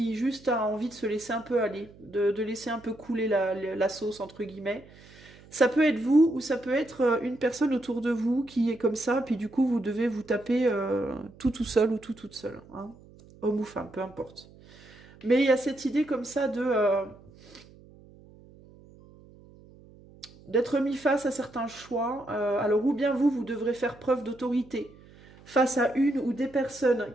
juste a envie de se laisser un peu aller, de laisser un peu couler la sauce, entre guillemets. Ça peut être vous ou ça peut être une personne autour de vous qui est comme ça, puis du coup vous devez vous taper tout seul ou toute seule, hein. Homme ou femme, peu importe. Mais il y a cette idée comme ça d'être mis face à certains choix. Alors ou bien vous devrez faire preuve d'autorité face à une ou des personnes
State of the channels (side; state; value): right; noise; hum, 23 dB below the sound